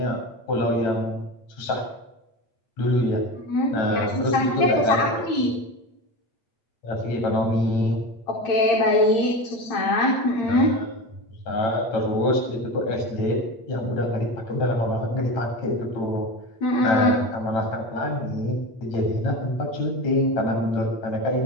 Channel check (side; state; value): right; late; 8.5 ms